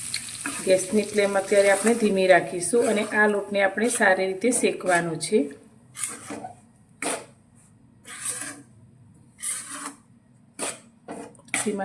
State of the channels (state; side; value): identical; both; correlation 1.00